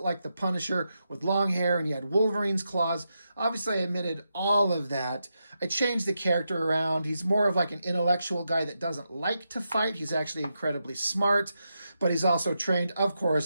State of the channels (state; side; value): inverted; both; correlation -0.86